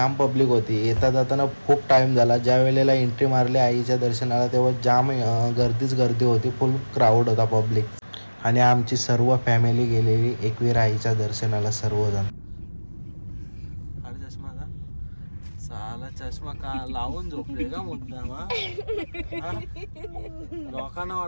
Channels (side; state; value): both; inverted; correlation -1.00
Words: पब्लिक होती. येता जाताना खूप टाईम झाला. ज्या वेळेला एंट्री मारली आईच्या दर्शनाला तेव्हा जाम गर्दी होती, फुल क्राऊड होता पब्लिक. आणि आमची सर्व फॅमिली गेलेली एकविरा आईच्या दर्शनाला सर्वजण. अरे चष्मा का साला चष्मा का लावून झोपले का मुद्दाम? लोकांना